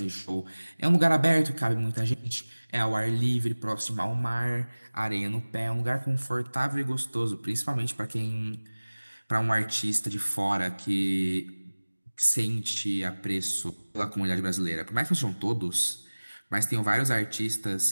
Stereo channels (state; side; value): inverted; both; correlation -1.00